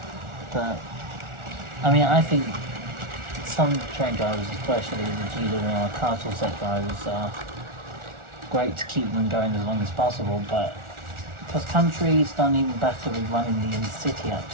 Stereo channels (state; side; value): late; left; 1.4 ms